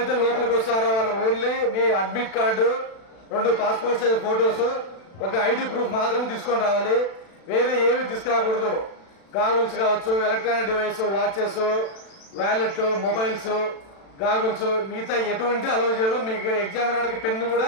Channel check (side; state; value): right; late; 36 ms